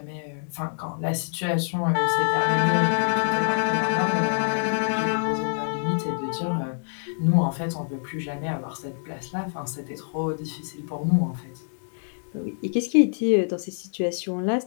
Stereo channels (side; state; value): right; silent; digital silence